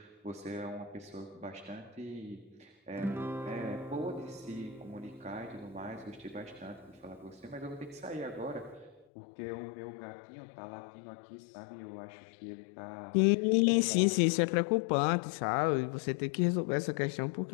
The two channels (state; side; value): drops out; right; at 9.1 s